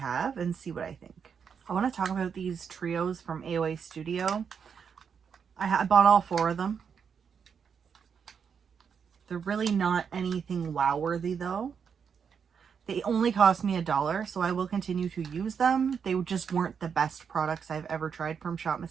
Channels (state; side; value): quieter; left; 6.7 dB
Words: and see what I think. I want to talk about these trios from AOA Studio. I bought all 4 of them. They're really not anything wow-worthy though. They only cost me $1, so I will continue to use them. They just weren't the best products I've ever tried from Shop